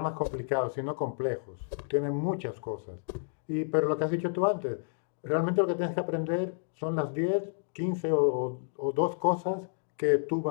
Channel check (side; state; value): right; silent; digital silence